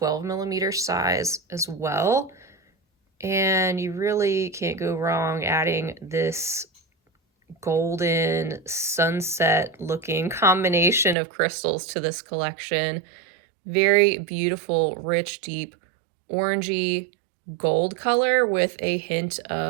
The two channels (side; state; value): left; drops out; at 11.2 s